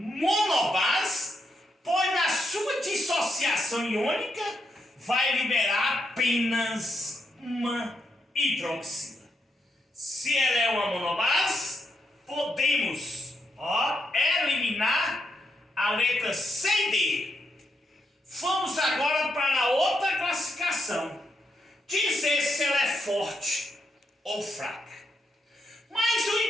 pois na sua dissociação iônica vai liberar apenas uma hidroxila. Se ela é uma monobase, podemos eliminar a letra C e D. Vamos agora para outra classificação. Dizer se ela é forte ou fraca. Mas o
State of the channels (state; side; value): normal; both; correlation 0.81